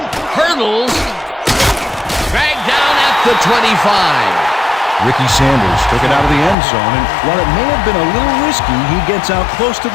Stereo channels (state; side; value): drops out; right; at 6.6 s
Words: Hurdles. Dragged down at the 25. Ricky Sanders took it out of the end zone, and while it may have been a little risky, he gets out close to